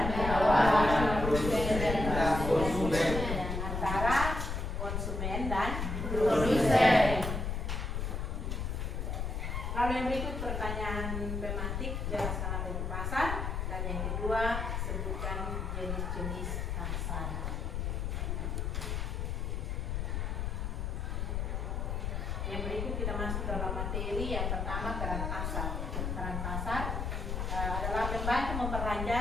konsumen dan produsen. Lalu yang berikut pertanyaan tematik, jelaskan apa itu pasar, dan yang kedua sebutkan jenis-jenis pasar. Yang berikut kita masuk dalam materi. Yang pertama, peran pasar. Peran pasar adalah membantu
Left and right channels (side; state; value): left; noise; rumble, 2 dB below the sound